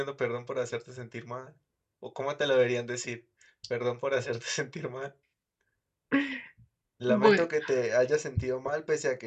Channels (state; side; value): identical; both; correlation 1.00